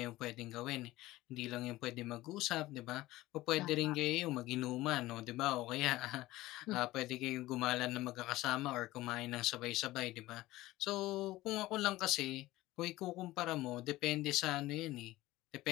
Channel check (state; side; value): quieter; right; 17.6 dB